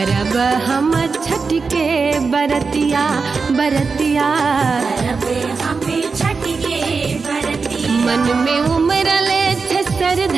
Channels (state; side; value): quieter; left; 4.7 dB